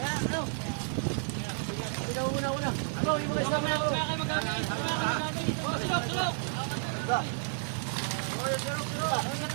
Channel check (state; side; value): silent; left; digital silence